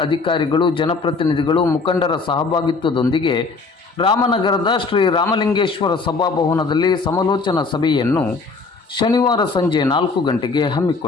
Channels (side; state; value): right; quieter; 4.2 dB